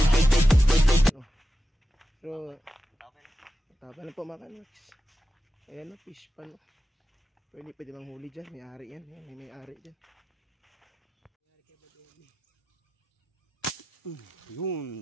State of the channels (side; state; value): both; normal; correlation 0.91